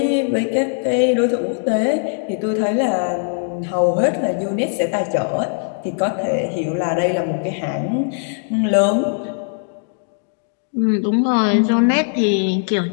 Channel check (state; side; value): silent; right; 66 dB below the other